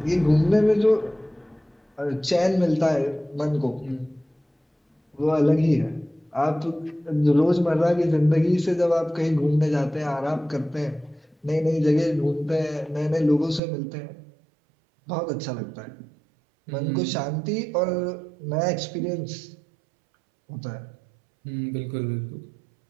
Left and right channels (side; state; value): left; drops out; at 13.6 s